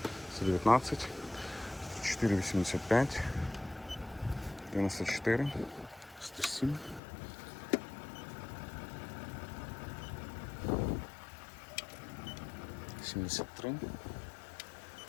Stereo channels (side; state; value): right; drops out; at 7.0 s